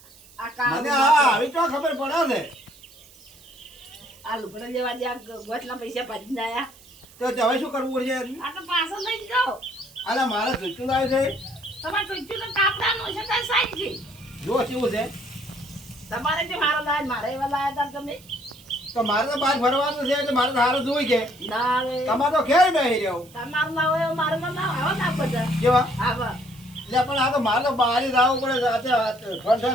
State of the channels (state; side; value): noise; right; hiss, 24 dB below the sound